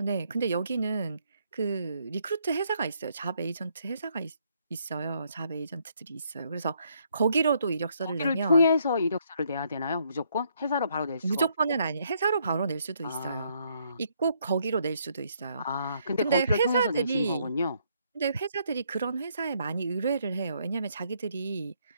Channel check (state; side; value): inverted; both; correlation -0.71